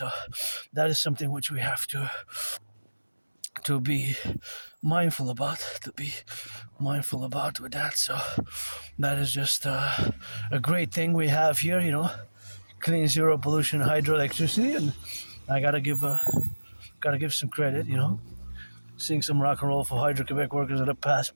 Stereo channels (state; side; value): inverted; both; correlation -1.00